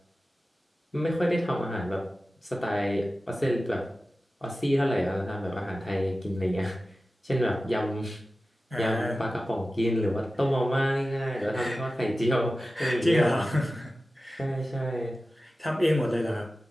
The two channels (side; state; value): both; normal; correlation 0.95